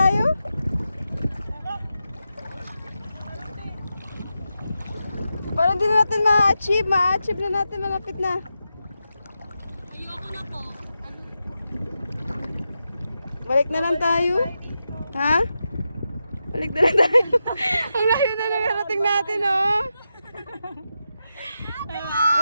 Para di na natin ma-achieve. Ma-achieve na natin, malapit na. Ayoko na po. Balik na lang tayo. Ha? Balik na lang tayo. Ang layo na narating natin, oh.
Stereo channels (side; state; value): both; inverted; correlation -0.88